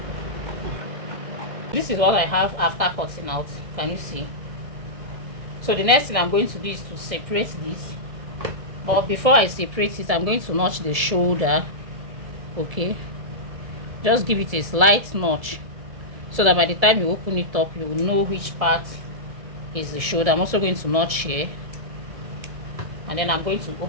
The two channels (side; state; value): left; late; 1.7 ms